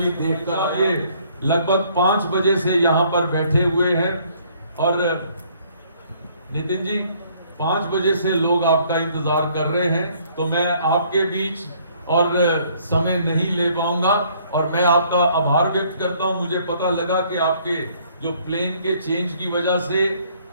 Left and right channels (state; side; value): inverted; both; correlation -0.62